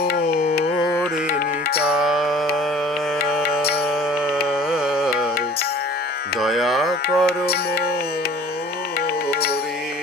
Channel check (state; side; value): normal; both; correlation 0.48